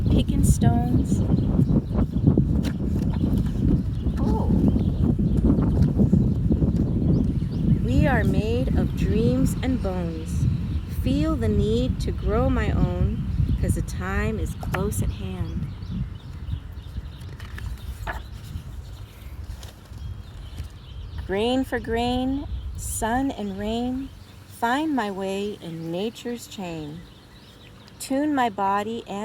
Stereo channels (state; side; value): identical; both; correlation 1.00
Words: picking stones. Oh. We are made of dreams and bones. Feel the need to grow my own, 'cause the time is close at hand. Grain for grain, sun and rain, find my way in nature's chain. Tune my body